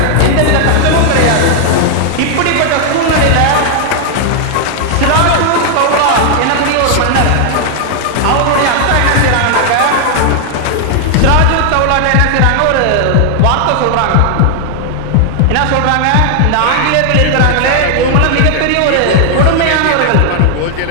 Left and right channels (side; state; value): both; different; correlation 0.00